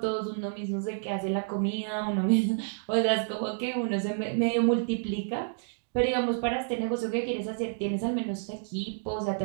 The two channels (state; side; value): silent; left; digital silence